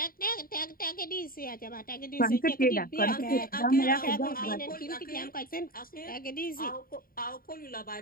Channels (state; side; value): late; right; 0.42 ms